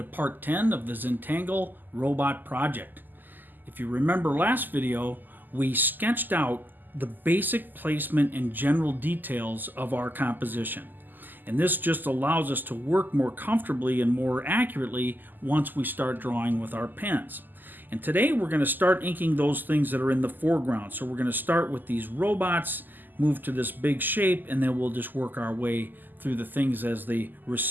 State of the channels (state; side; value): late; left; 0.088 ms